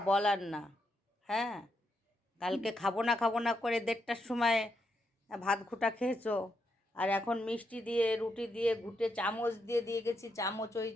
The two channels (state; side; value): normal; both; correlation 0.81